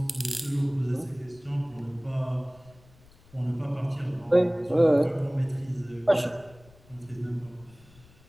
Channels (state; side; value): noise; left; rumble, 26 dB below the sound